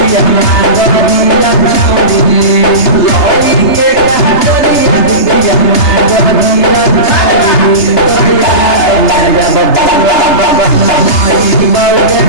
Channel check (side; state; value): right; late; 3.3 ms